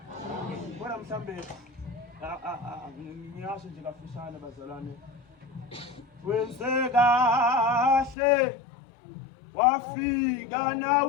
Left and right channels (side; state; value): right; drops out; at 8.2 s